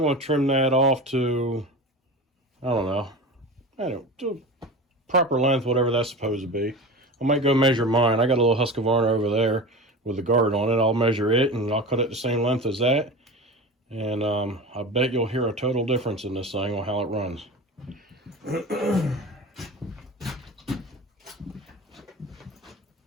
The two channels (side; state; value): both; normal; correlation 0.31